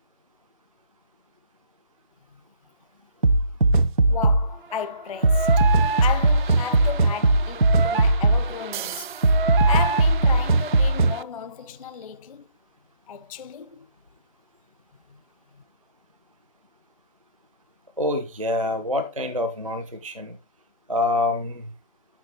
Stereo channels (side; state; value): both; inverted; correlation -0.62